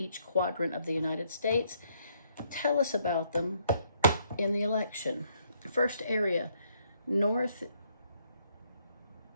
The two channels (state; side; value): inverted; both; correlation -0.70